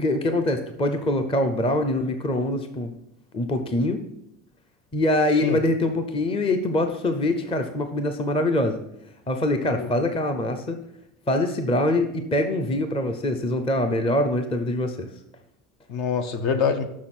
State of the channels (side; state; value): both; normal; correlation 0.42